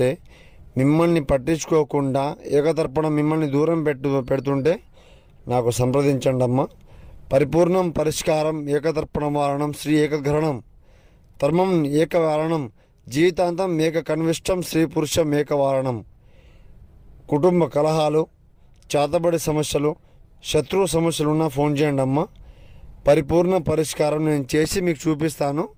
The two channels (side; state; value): both; identical; correlation 1.00